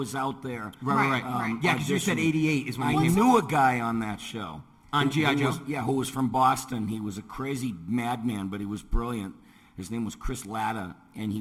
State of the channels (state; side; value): identical; both; correlation 1.00